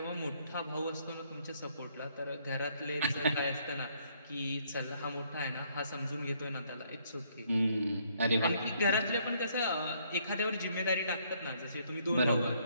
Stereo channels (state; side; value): inverted; both; correlation -0.68